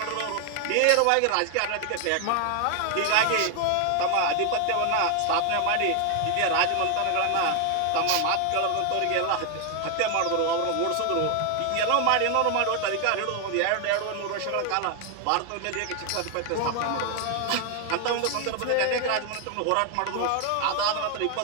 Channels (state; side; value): different; both; correlation 0.00